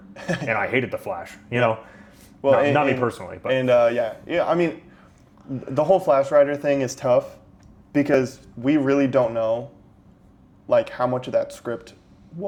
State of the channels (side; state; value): both; identical; correlation 1.00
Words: and I hated the Flash. You know, Well, not me personally, but yeah. I mean, the whole Flash writer thing is tough because we really don't know, like, how much of that script